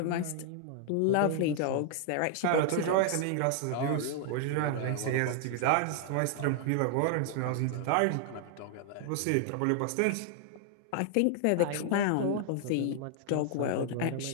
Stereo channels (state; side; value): different; both; correlation 0.00